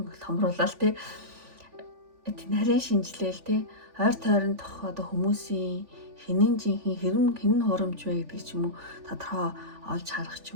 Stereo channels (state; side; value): late; left; 3.5 ms